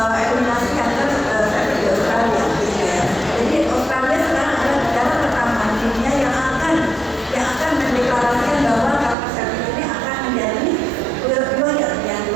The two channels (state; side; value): drops out; left; at 9.2 s